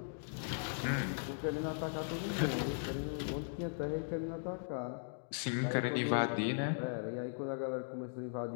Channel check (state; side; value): silent; right; digital silence